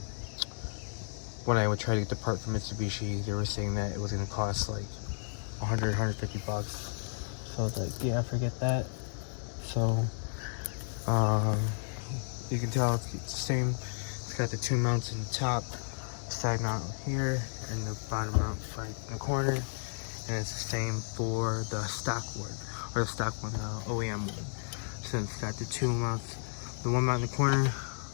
I would try to get the part from Mitsubishi, they were saying that it was going to cost like 100, 150 bucks. So I was like, yeah, forget that. So, you can tell it's the same. It's got the two mounts in the top, side mount here, and the bottom mount right in the corner. And it's the same for the stock one, or the stock one, the OEM one. So it's got the two mounts, the one mount in the corner,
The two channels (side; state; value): right; silent; digital silence